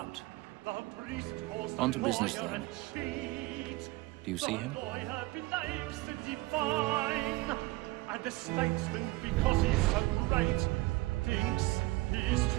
On to business then. Do you see him? And the statesman, because he's so great, thinks his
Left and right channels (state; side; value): quieter; left; 21.2 dB